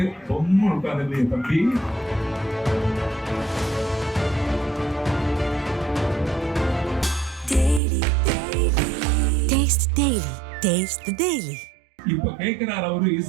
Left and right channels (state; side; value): drops out; left; at 7.8 s